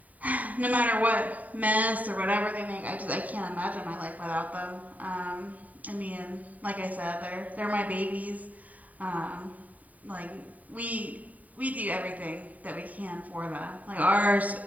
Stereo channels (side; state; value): left; late; 0.073 ms